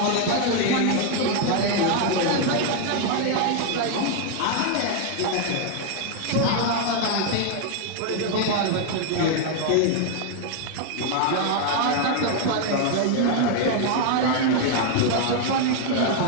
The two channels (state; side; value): different; both; correlation 0.00